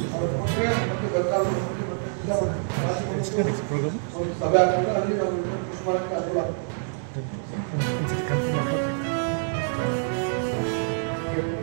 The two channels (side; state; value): left; silent; digital silence